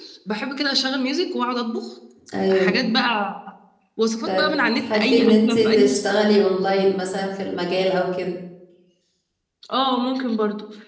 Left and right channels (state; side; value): identical; both; correlation 1.00